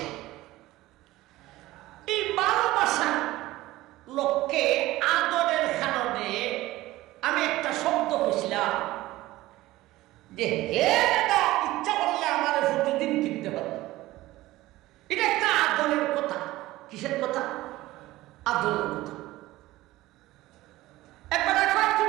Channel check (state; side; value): quieter; left; 17.4 dB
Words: এই ভালোবাসা লোককে আদরের কারণে আমি একটা শব্দ কইছিলাম যে হে দাদা, ইচ্ছা করলে আমার প্রতিদিন কিনতে পারবে। এটা একটা আদরের কথা। কিসের কথা? আদরের কথা। একবার একবার